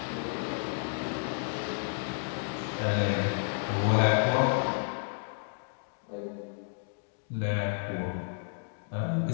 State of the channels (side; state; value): right; silent; digital silence